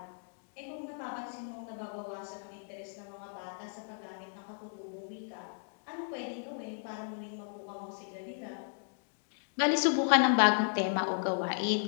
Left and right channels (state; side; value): silent; right; digital silence